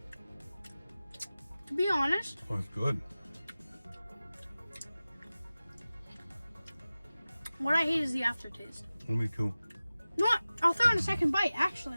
To be honest, Oh, it's good. what I hate is the aftertaste. Me too. You know what? I'll throw in a second bite, actually.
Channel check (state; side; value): inverted; both; correlation -0.97